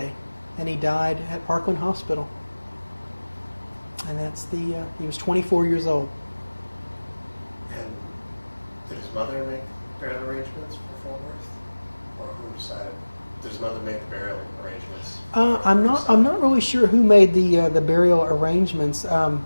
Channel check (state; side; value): inverted; both; correlation -1.00